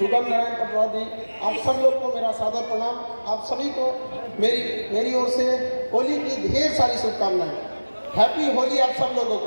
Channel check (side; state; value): both; inverted; correlation -1.00